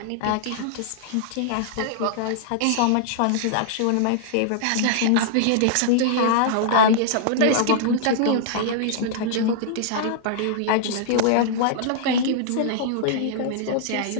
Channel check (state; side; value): different; both; correlation -0.01